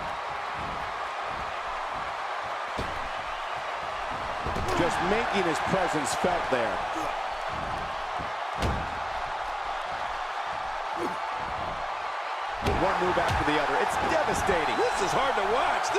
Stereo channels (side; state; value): both; identical; correlation 1.00